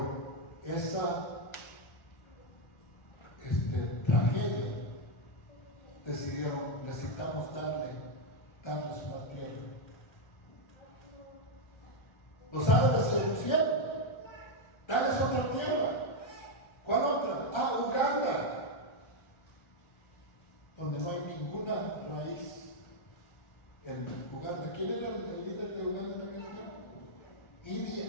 esa tragedia decidieron: necesitamos darles una tierra. Los árabes se opusieron: dales otra tierra. ¿Cuál otra? Uganda, donde no hay ninguna raíz en Uganda. ¿Quién era el líder de Uganda en aquel tiempo? Idi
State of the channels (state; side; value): late; right; 1.4 ms